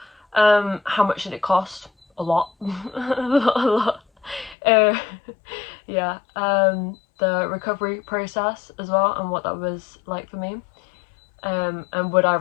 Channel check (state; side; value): drops out; right; at 4.5 s